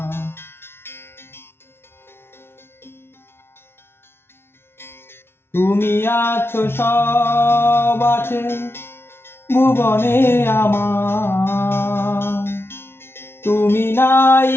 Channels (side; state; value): right; late; 0.12 ms